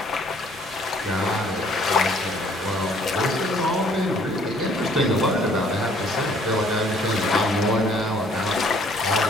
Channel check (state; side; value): normal; both; correlation 0.60